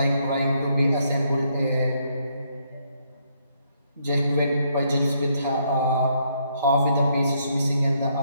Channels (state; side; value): inverted; both; correlation -0.73